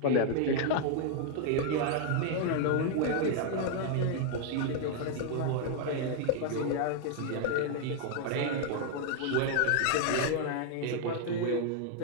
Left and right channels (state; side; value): different; both; correlation 0.00